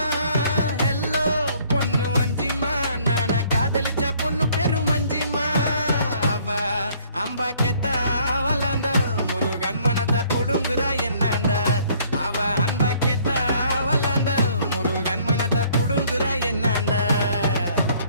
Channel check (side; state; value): both; inverted; correlation -0.60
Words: ஹெல்லோ பொண்ணு வஞ்சிமா நான காதலிச்ச பொண்ணு பேரு மஞ்சிமா அவ அம்பா கெத்த வளர்ந்த முருகன் மனத்தை புடுங்குற என்னண்ட அவ அன்பா கெத்த வளர்ந்த முருகன் மனத்தை புடுங்குற என்னண்ட